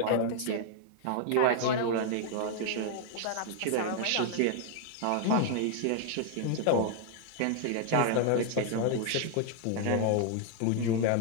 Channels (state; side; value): different; both; correlation 0.00